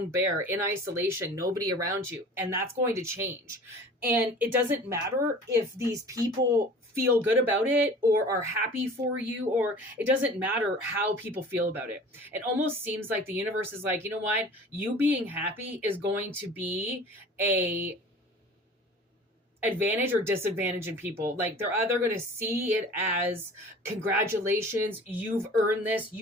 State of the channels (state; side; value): normal; both; correlation 0.43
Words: bear in isolation, nobody around you, and that's going to change. And it doesn't matter if these people feel good about it or are happy for you, or it doesn't matter how people feel about it. It almost seems like the universe is like, you know what? You being happy is going to be a advantage or disadvantage in people. Like, they're either going to see it as congratulations, you've earned this,